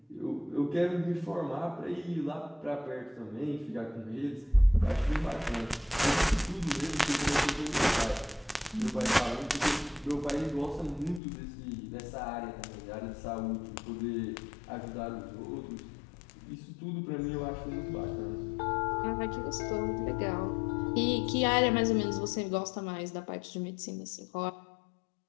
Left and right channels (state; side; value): drops out; right; at 11.2 s